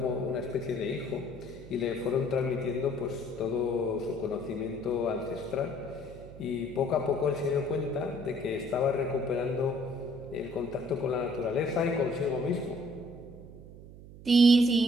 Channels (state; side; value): noise; right; hum, 16 dB below the sound